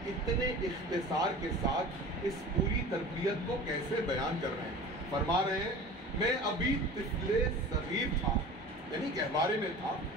इतने इख्तिसार के साथ इस पूरी तरबियत को कैसे बयान कर रहे हैं। फरमा रहे हैं, मैं अभी तिफले सगीर था, यानी गहवारे में था,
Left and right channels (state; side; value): normal; both; correlation 0.38